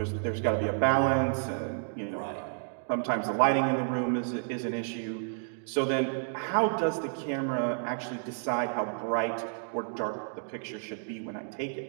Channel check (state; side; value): silent; left; digital silence